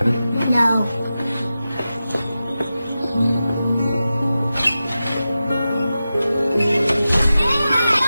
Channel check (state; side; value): inverted; both; correlation -0.93